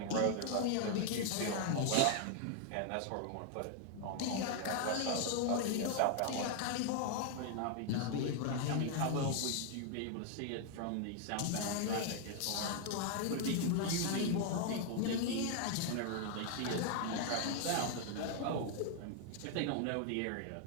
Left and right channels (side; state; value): both; different; correlation 0.00